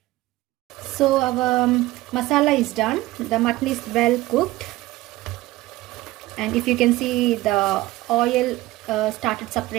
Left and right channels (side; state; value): left; quieter; 18.0 dB